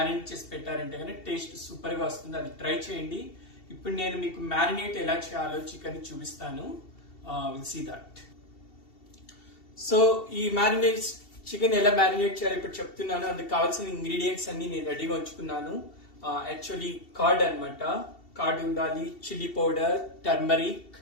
చేసి పెట్టారంటే కానీ టేస్ట్ సూపర్ గా వస్తుంది. అది ట్రై చేయండి. ఇప్పుడు నేను మీకు మ్యారినేట్ ఎలా చేయాలో చికెన్ చూపిస్తాను. Will see that. సో ఈ మ్యారినేట్ చికెన్ ఎలా మ్యారినేట్ చేయాలో ఇప్పుడు చెప్తున్నాను. అందుకు కావాల్సిన ఇంగ్రీడియంట్స్ అన్ని నేను రెడీగా ఉంచుకున్నాను. యాక్చువల్లీ కర్డ్ అనమాట. కర్డ్ ఉండాలి, చిల్లీ పౌడర్, టర్మరిక్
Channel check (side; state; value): right; late; 2.7 ms